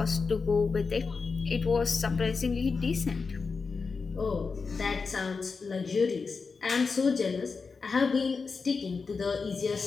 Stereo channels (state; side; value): quieter; right; 4.8 dB